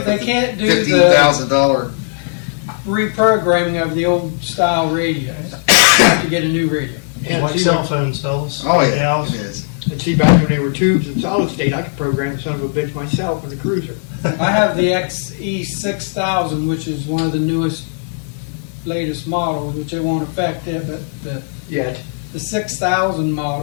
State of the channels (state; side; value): silent; right; digital silence